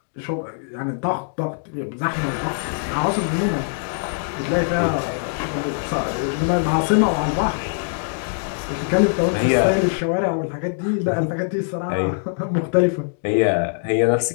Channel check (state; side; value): silent; right; digital silence